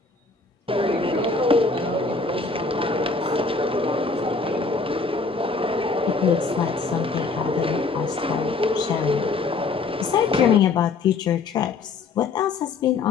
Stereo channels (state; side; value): quieter; right; 4.2 dB